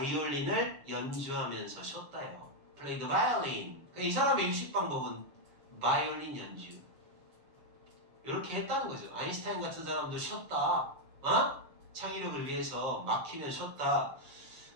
연주하면서 쉬었다요. Play the violin. 그러니까 이 사람의 휴식 방법은 바이올린 연주. 이렇게 했다는 거죠. 아인슈타인 같은 사람도 쉬었다. 창의력을 위해서 막히면 쉬었다.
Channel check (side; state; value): left; late; 7.2 ms